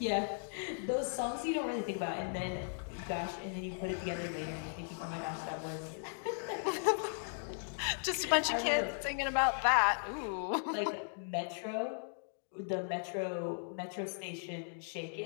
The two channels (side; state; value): right; silent; digital silence